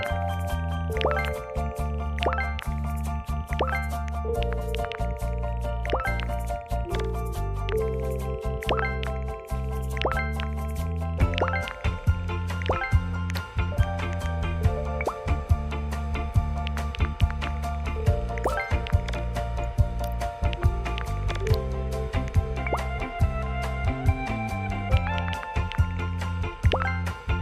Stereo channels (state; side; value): identical; both; correlation 1.00